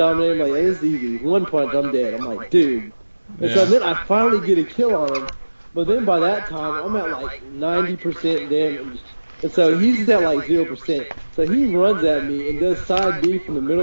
him like, this is easy. One punch, I'm dead. I'm like, dude. And so then I finally get a kill on him. But then by that time, I'm at like 90% damage. And so he's at like 0%. So he runs at me and does side B from the middle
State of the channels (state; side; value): inverted; both; correlation -1.00